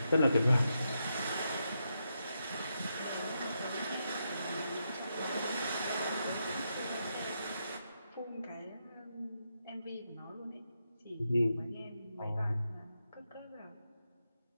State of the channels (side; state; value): both; inverted; correlation -0.83